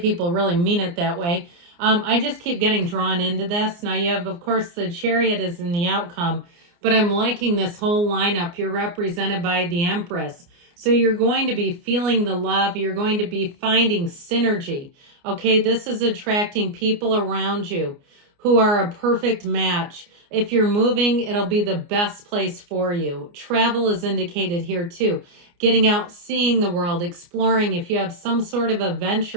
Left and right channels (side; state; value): left; late; 29 ms